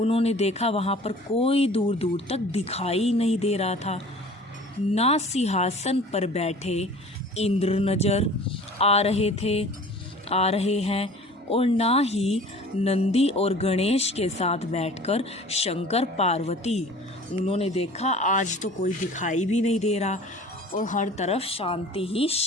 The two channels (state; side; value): normal; both; correlation 0.45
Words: देखा वहाँ पर कोई दूर दूर तक दिखाई नहीं दे रहा था। ना सिंहासन पर बैठे इंद्र नज़र आ रहे हैं, और ना ही नंदी और गणेश के साथ बैठकर शंकर पार्वती। उन्होंने देखा आज तो कोई दिखाई भी नहीं दे रहा, और हर तरफ शांति ही